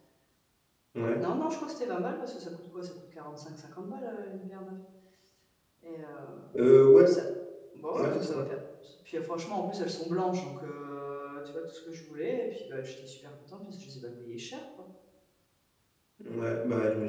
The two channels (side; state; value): both; identical; correlation 1.00